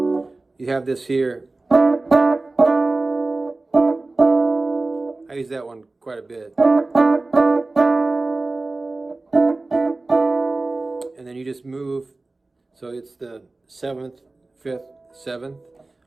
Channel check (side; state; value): left; quieter; 3.2 dB